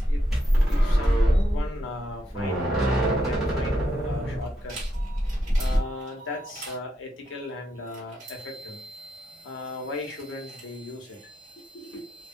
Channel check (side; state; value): both; normal; correlation 0.81